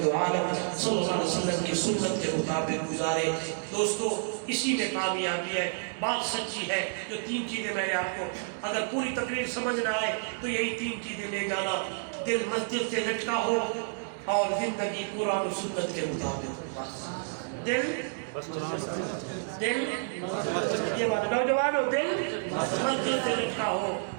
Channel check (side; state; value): left; silent; digital silence